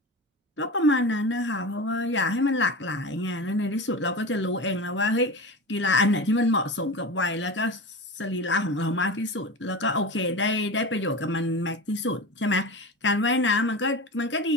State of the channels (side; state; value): both; normal; correlation 0.28